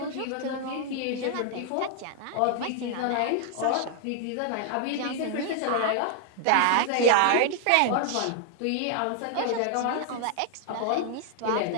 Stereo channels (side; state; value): both; different; correlation 0.00